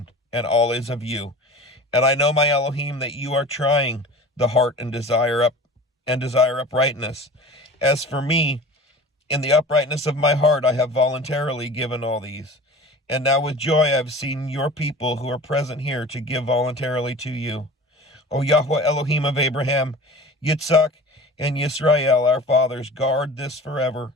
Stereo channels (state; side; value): normal; both; correlation 0.39